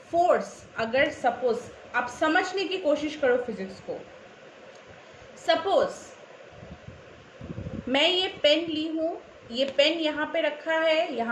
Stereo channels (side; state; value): both; identical; correlation 1.00